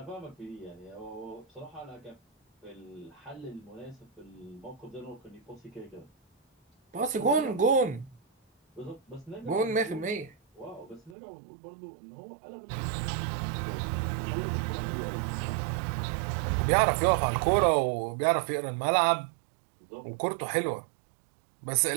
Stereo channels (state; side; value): drops out; left; at 11.2 s